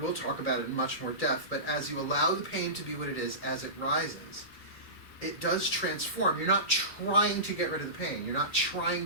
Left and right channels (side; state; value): right; late; 2.3 ms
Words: talk about it in much more depth, but as you allow the pain to be what it is as it rises, it does transform. You're not trying to get rid of the pain. You're not